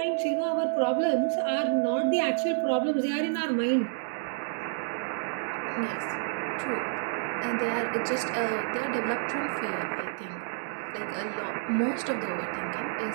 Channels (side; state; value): left; silent; digital silence